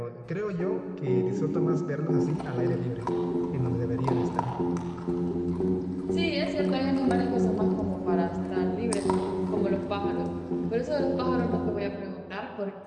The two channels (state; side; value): identical; both; correlation 1.00